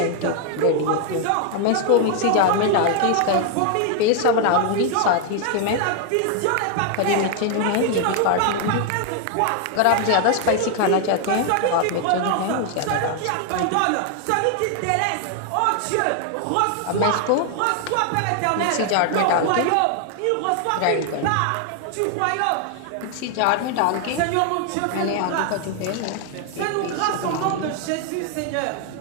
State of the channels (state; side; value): different; both; correlation 0.00